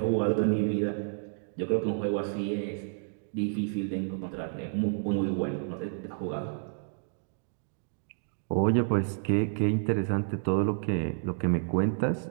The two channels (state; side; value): silent; left; digital silence